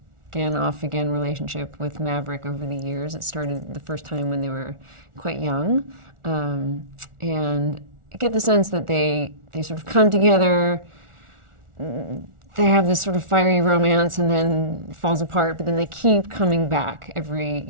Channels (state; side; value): late; left; 1.4 ms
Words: off again relationship with Maverick over the years. It started the first time when they were quite young. And I get the sense that they sort of come together, they have this sort of fiery romance and then it falls apart, but then they keep coming back